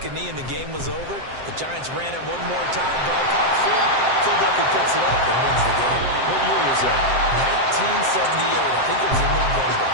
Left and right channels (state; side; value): late; left; 7.7 ms